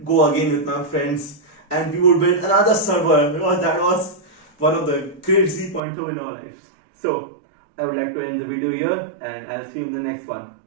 go again with my friends, and we would build another server, because that was one of the crazy points of in our lives. So I would like to end the video here, and I'll see you in the next one.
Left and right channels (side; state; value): left; drops out; at 5.8 s